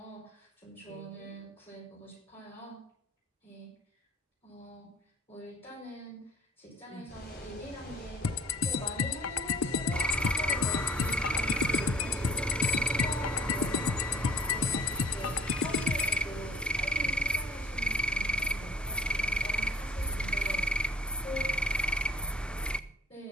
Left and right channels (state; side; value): normal; both; correlation 0.53